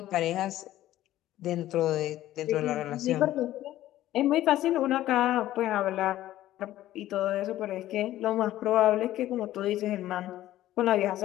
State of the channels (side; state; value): right; quieter; 14.1 dB